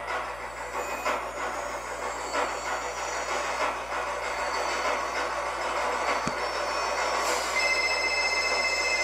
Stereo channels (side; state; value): left; noise; hum, 17 dB below the sound